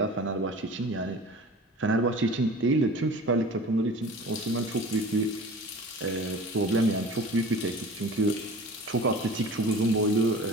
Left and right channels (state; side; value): normal; both; correlation 0.40